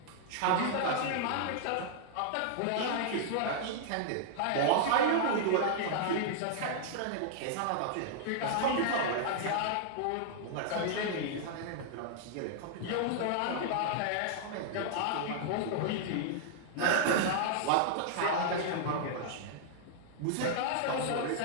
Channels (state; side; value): different; both; correlation -0.01